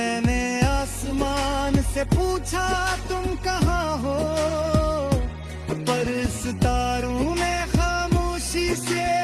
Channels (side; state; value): both; identical; correlation 1.00